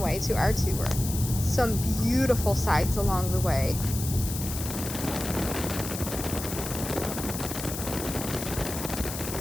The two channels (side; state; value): left; noise; hiss, 7 dB below the sound